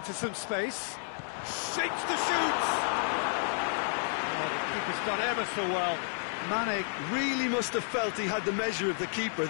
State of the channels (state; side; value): silent; right; digital silence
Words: some space. Shakes to shoot! Oh, the keeper's done ever so well. Mane really must have felt he had the measure of the keeper